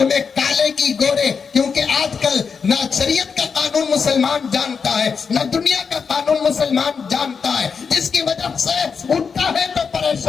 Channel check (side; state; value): right; quieter; 5.8 dB